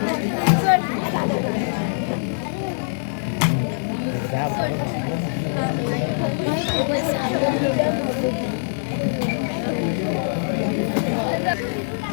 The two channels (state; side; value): silent; right; 58 dB below the other